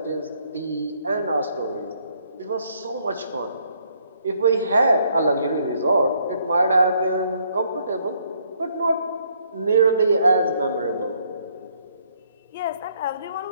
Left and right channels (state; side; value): inverted; both; correlation -0.69